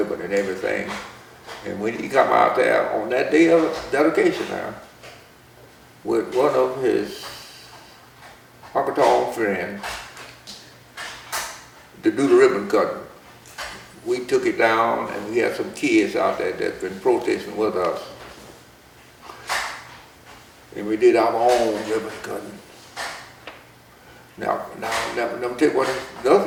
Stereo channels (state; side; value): identical; both; correlation 1.00